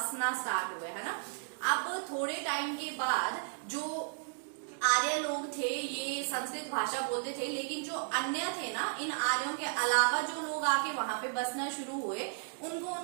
स्टार्ट हुए, है ना। अब थोड़े टाइम के बाद जो आर्य लोग थे ये संस्कृत भाषा बोलते थे, लेकिन जो अन्य थे ना, इन आर्यों के अलावा जो लोग आके वहां पे बसना शुरू हुए, उनको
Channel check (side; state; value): left; silent; digital silence